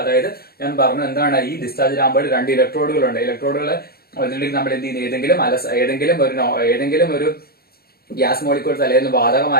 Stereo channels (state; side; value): late; right; 0.45 ms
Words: അതായത് ഞാൻ പറഞ്ഞു എന്താണ്, ഈ ഡിസ്ചാർജ് ലാമ്പുകൾ രണ്ട് ഇലക്ട്രോഡുകളുണ്ട്. നമ്മൾ എന്ത് ചെയ്യുന്നു, ഏതെങ്കിലും ഒരു ഗ്യാസ് മോളിക്യൂൾസ് അല്ലെങ്കിൽ